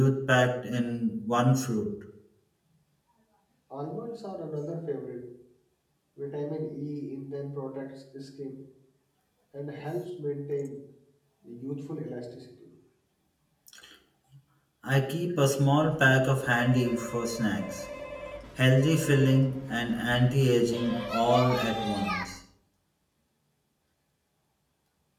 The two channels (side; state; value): both; identical; correlation 1.00